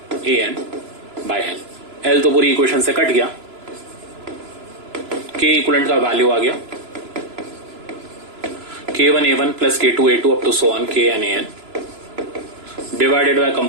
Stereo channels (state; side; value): late; left; 3.0 ms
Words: AN by L। L तो पूरी इक्वेशन से कट गया, के इक्विवेलेंट का वैल्यू आ गया K1A1 plus K2A2 up to so on KNAN divided by